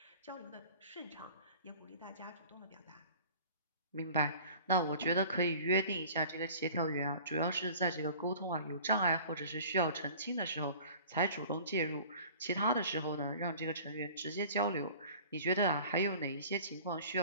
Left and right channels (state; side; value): inverted; both; correlation -0.45